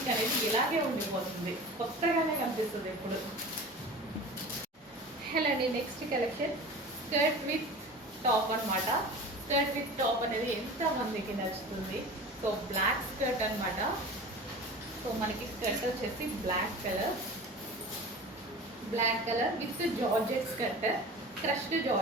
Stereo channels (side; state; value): both; normal; correlation 0.36